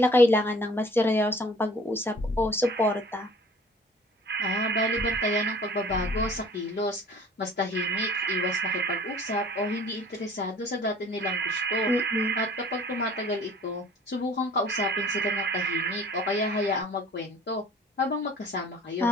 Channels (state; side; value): normal; both; correlation 0.49